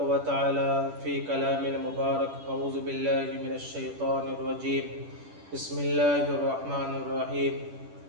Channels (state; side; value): late; left; 10 ms